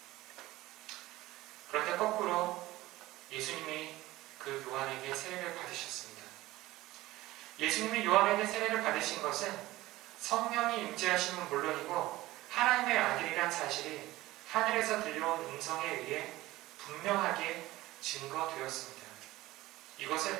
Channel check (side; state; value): left; quieter; 17.6 dB